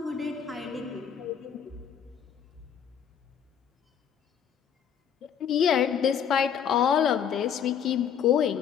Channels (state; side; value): quieter; right; 8.2 dB